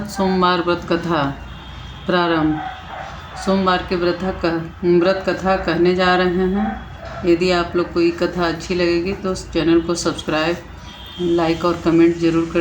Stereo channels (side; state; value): both; identical; correlation 1.00